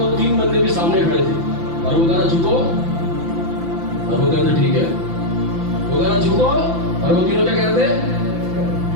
तीन बंदे भी सामने खड़े थे। और वो कह रहा झुको, और वो कहते ठीक है। वो कह रहा झुको, और वो तीनों क्या कहते?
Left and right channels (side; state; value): left; late; 5.9 ms